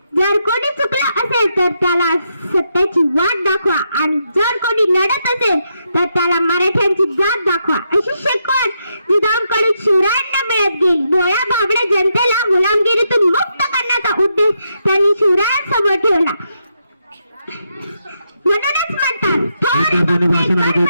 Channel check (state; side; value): inverted; both; correlation -0.81